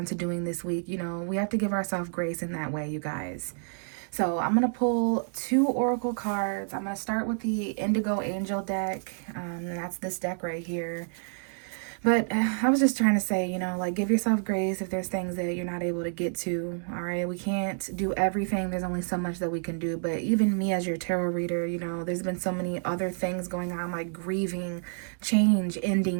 to doing this week, you know, we have to give ourselves grace in that way, you guys. So I'm going to pull 2 oracle cards. I'm going to start with the Indigo Angel deck, and that's this deck right here. But I was just trying to say, you know, like, give yourself grace if there's things that you're not able to get to, all right? We can't do everything. There's only so much that we can do. But even me as your tarot reader, you know, there's been so many other things going on, like grieving, change,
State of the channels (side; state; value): left; silent; digital silence